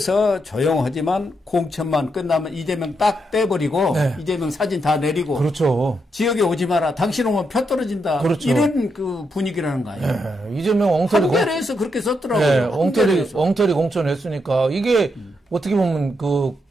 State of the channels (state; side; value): normal; both; correlation 0.81